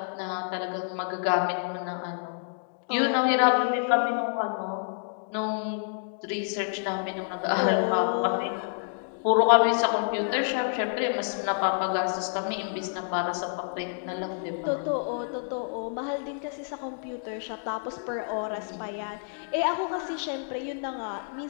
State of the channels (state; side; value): silent; right; digital silence